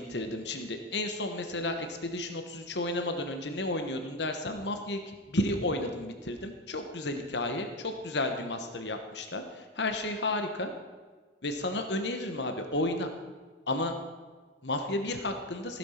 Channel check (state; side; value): normal; both; correlation 0.12